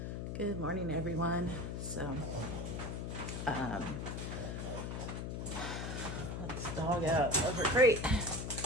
Good morning, everyone. So, let's dog out over crate.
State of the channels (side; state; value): left; noise; hum, 4 dB below the sound